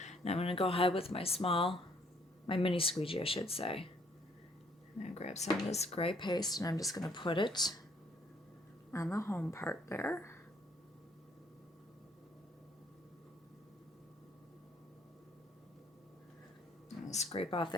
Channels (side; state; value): both; normal; correlation 0.65